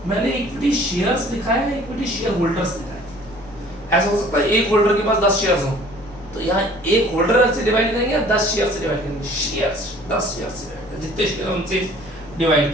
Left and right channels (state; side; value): noise; left; hum, 20 dB below the sound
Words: मैंने इक्विटी शेयर्स लिखा है, इक्विटी शेयर होल्डर्स लिखा है। ऐसा हो सकता है एक होल्डर के पास 10 शेयर्स हो, तो यहाँ एक होल्डर से डिवाइड करेंगे, 10 शेयर से डिवाइड करेंगे, शेयर्स 10 शेयर से डिवाइड करेंगे, जितने शेयर उनसे